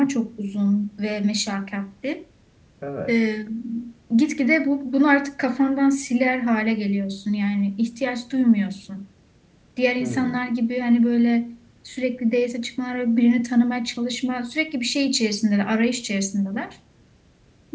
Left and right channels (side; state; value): both; identical; correlation 1.00